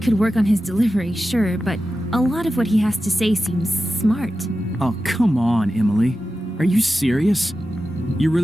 work on his delivery, sure, but a lot of what he has to say seems smart. Oh, come on, Emily. Are you serious? You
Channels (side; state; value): both; normal; correlation 0.92